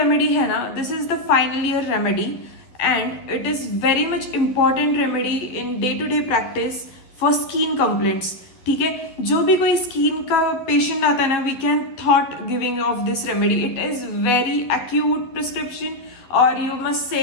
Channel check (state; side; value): late; right; 11 ms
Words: है ना, this is the final year remedy and it is very much important remedy in day to day practice for skin complaints. ठीक है, जो भी कोई skin का पेशेंट आता है ना, we can thought giving of this remedy. It is very acute prescription और यू मस्ट से